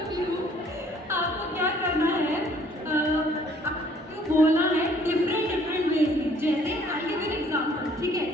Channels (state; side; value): normal; both; correlation 0.60